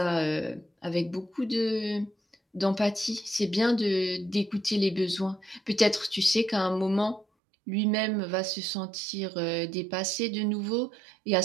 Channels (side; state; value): left; drops out; at 7.2 s